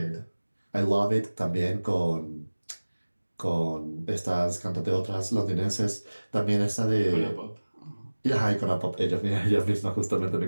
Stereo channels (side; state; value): both; inverted; correlation -1.00